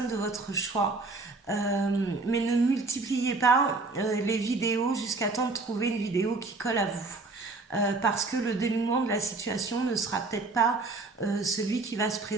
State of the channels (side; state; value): left; quieter; 3.6 dB